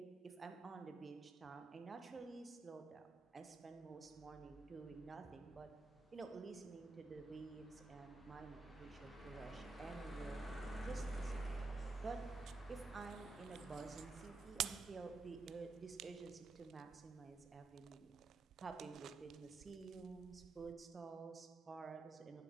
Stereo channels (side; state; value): left; quieter; 3.6 dB